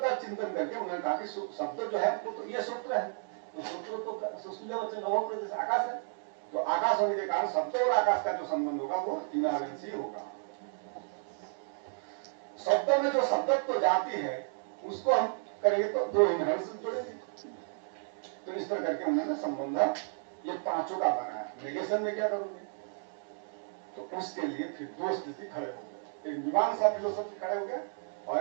चिंतन करके उन्होंने कहा कि शब्द जो है वो तो ये सूत्र है, तो सूत्र तो सुशील वचन नवम प्रदेश आकाश है। तो आकाश होने के कारण शब्द और आकाश का जो संबंध होगा वो इनहेरेंसी होगा। शब्दों में जो शब्दत्व जाती है उसको हम करेंगे तो दो इनहेरिटेंस जुड़ेंगे। तो इस तरह करके उन्होंने संबंध ये पांचों का बनाया। नेगेशन में क्या करोगे? तो उसके लिए फिर दो स्थिति खड़े हो गए, एक मीमांसा फिलोसफी खड़े हो गए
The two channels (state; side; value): silent; left; digital silence